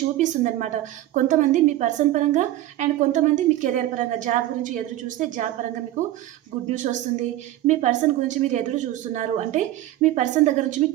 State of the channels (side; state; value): left; quieter; 14.4 dB